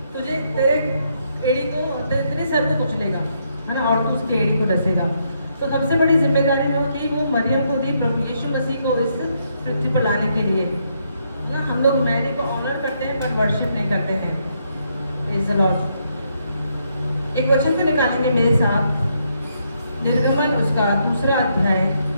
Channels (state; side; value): inverted; both; correlation -0.76